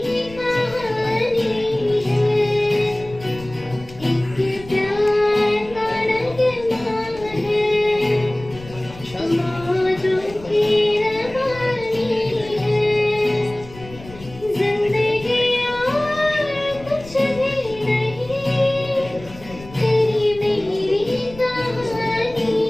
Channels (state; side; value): noise; left; rumble, 18 dB below the sound